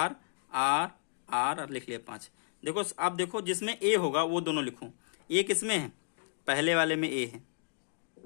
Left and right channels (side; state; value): right; silent; 56 dB below the other